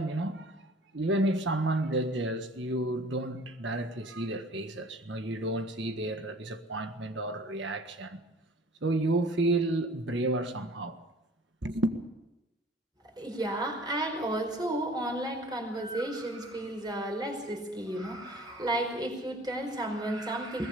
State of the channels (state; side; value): normal; both; correlation 0.48